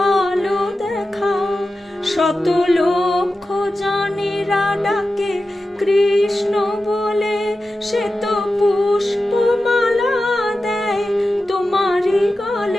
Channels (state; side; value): normal; both; correlation 0.93